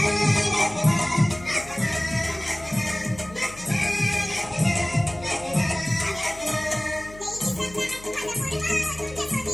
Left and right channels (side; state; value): left; noise; hum, 18 dB below the sound